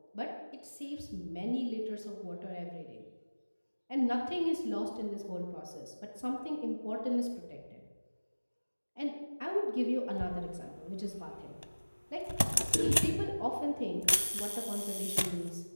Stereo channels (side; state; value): both; inverted; correlation -1.00